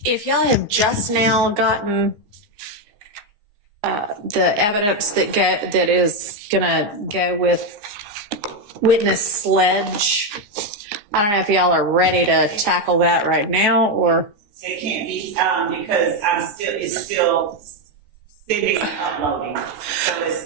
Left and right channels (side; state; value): left; late; 15 ms